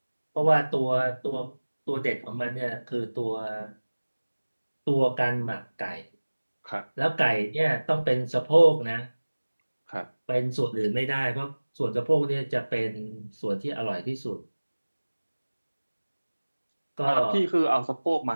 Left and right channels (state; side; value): inverted; both; correlation -1.00